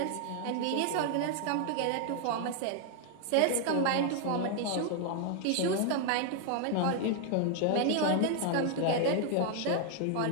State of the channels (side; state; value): both; different; correlation 0.00